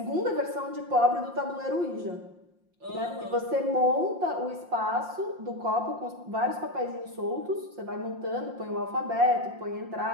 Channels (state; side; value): late; left; 5.7 ms